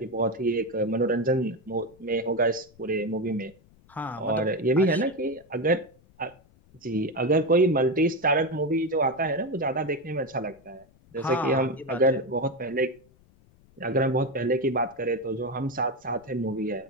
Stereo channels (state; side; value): noise; left; rumble, 29 dB below the sound